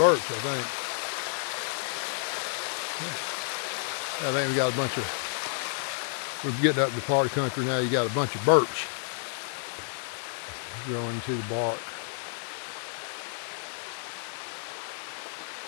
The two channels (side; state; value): right; silent; digital silence